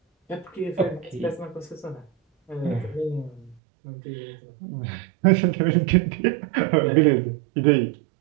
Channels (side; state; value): left; drops out; at 3.6 s